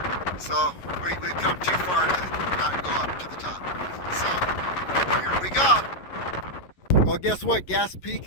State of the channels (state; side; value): late; right; 11 ms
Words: So we've come too far to not go up to the top. So here we go. Well, guess what? Gas Peak